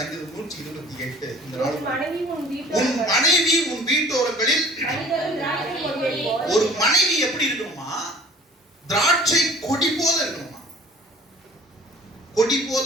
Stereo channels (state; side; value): normal; both; correlation 0.48